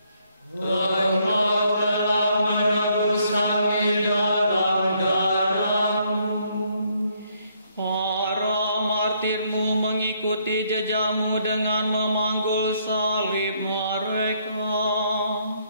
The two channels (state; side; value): inverted; both; correlation -0.70